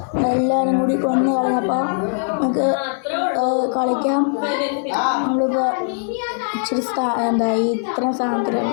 എല്ലാവരും കൂടി കൊന്നു കളഞ്ഞപ്പോൾ നമുക്ക് കളിക്കാം. നമ്മളിപ്പോൾ ഇച്ചിരി ഇത്രയും സാധനത്തിലാണ്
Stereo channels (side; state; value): right; silent; 63 dB below the other